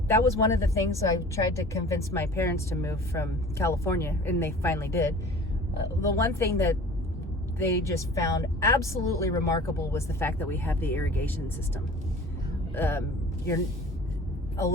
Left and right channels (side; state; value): both; normal; correlation 0.44